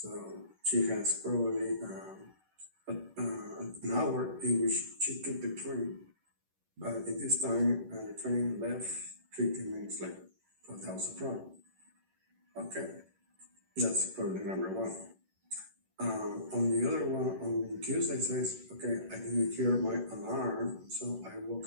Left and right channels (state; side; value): late; left; 11 ms